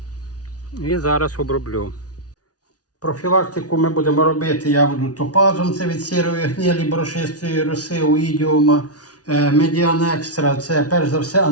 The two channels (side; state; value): right; late; 0.68 ms